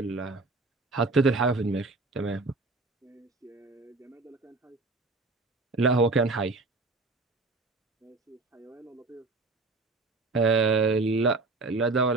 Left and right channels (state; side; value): quieter; left; 3.5 dB